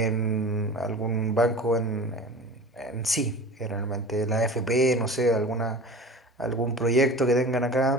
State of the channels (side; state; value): both; normal; correlation 0.37